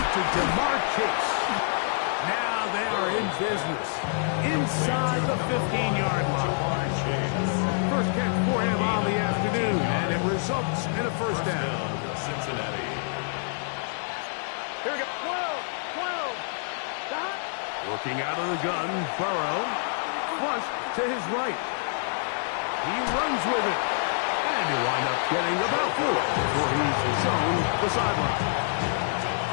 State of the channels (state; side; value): silent; right; 60 dB below the other